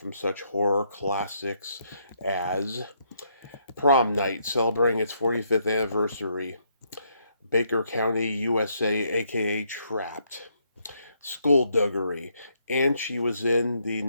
such horror classics as Prom Night, celebrating its 45th anniversary, Baker County, USA, aka Trapped, Skullduggery, and she was in the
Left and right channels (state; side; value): inverted; both; correlation -0.74